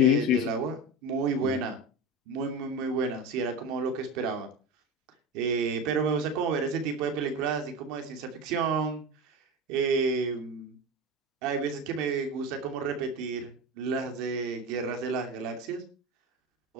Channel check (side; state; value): both; normal; correlation 0.24